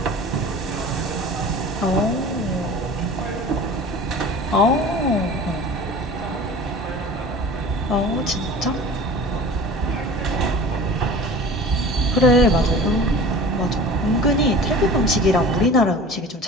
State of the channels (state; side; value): normal; both; correlation 0.40